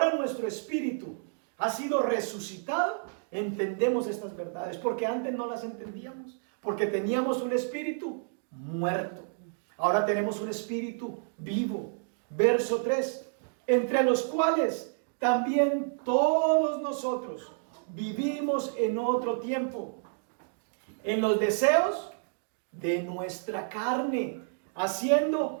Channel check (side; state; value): left; silent; digital silence